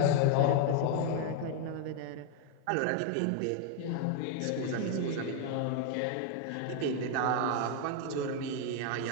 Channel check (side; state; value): both; different; correlation 0.01